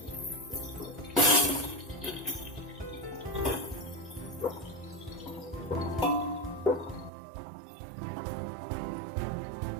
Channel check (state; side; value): drops out; left; at 7.1 s